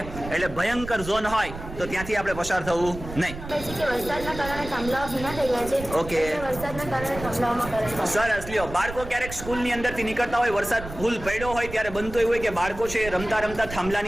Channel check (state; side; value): noise; right; rumble, 11 dB below the sound